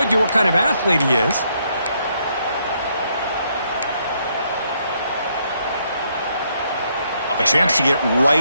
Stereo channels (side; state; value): both; inverted; correlation -0.73